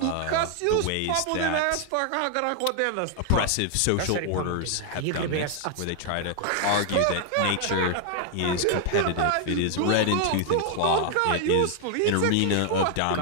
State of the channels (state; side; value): different; both; correlation 0.00